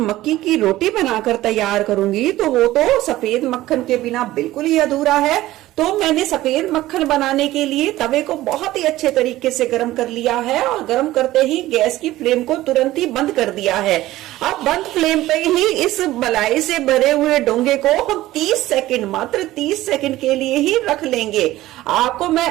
की रोटी बनाकर तैयार करूंगी तो वो तो सफेद मक्खन के बिना बिल्कुल ही अधूरा है। तो मैंने सफेद मक्खन बनाने के लिए तवे को बहुत ही अच्छे तरीके से गर्म कर लिया है और गर्म करते ही गैस की फ्लेम को तुरंत ही बंद कर दिया है। अब बंद फ्लेम पे ही इस मलाई से भरे हुए डोंगे को हम 30 सेकंड, मात्र 30 सेकंड के लिए ही रख लेंगे। आपको मैं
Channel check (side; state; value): left; quieter; 16.1 dB